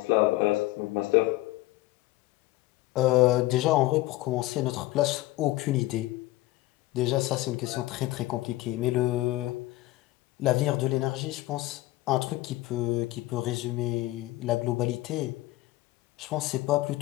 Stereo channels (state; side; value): quieter; right; 18.2 dB